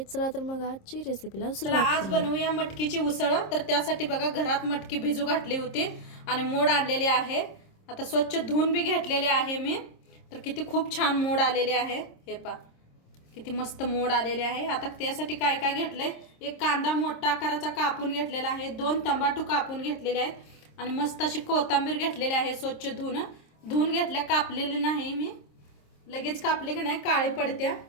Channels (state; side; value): late; right; 26 ms